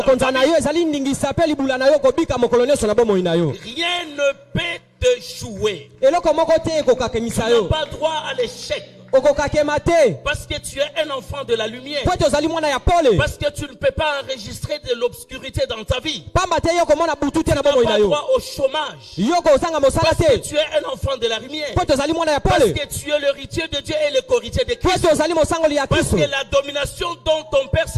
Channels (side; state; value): both; identical; correlation 1.00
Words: kokonza na vie. yo ezali ndingisa pe libula na yo kobika mokolo nyonso na bomoi na yo. Rien ne peut te jouer. Eloko moko te Tu ekokakemisa n'as yo. pas droit à l'échec Okokakema te. parce que tu es un enfant de la lumière. Po ete ozali mwana ya pole. Parce que tu ne peux pas enregistrer de l'obscurité dans ta vie. Pamba te yo komona butu te na Tu n'as bomoi na pas yo. droit au chômage. Yo kozanga mosala Parce que te. tu es un enfant de la lumière. Po ete ozali mwana ya Parce pole. que tu es l'héritier de Dieu et le co-héritier de Po Christ. ete ozali mosangoli ya Parce Kristo. que la domination dont ton Père